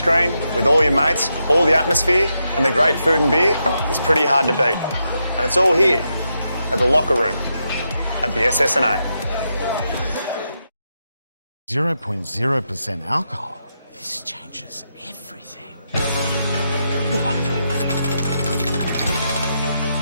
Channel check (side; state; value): both; inverted; correlation -0.84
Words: with all your mates, all the atmosphere and the great food and beer is pretty hard to beat. And it's all here at the locker room at the SSNA. 0.0% alcohol. This changes everything.